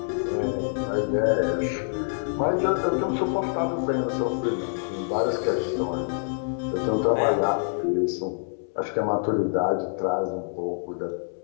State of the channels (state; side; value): silent; right; digital silence